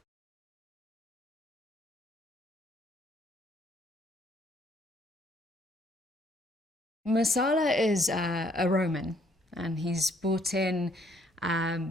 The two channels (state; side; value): normal; both; correlation 0.66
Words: Masala is a Roman, and he's brought in